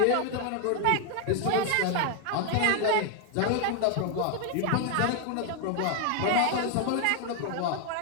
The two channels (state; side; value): different; both; correlation 0.01